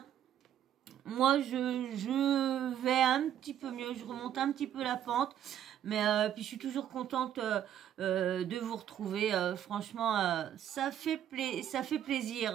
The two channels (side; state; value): left; quieter; 10.5 dB